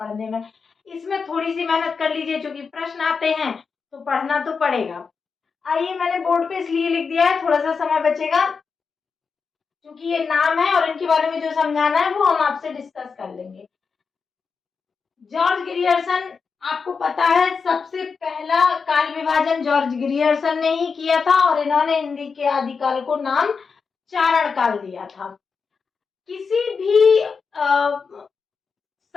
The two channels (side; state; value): right; quieter; 5.3 dB